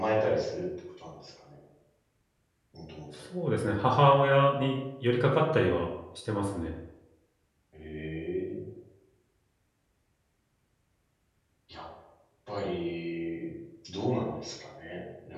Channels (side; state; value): both; identical; correlation 1.00